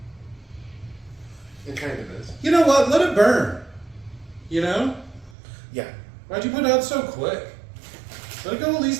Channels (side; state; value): left; drops out; at 5.4 s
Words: It kind of is. You know what? Let it burn. You know? Yeah. Why'd you put it out so quick? Let it go at